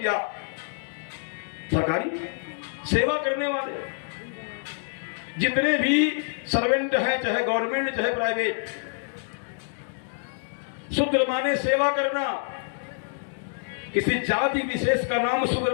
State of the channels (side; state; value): right; silent; digital silence